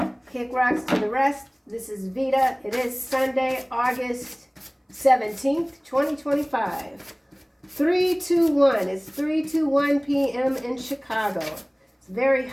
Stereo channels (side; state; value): both; identical; correlation 1.00